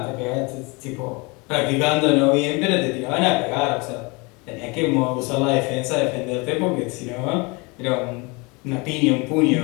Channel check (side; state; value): right; quieter; 27.8 dB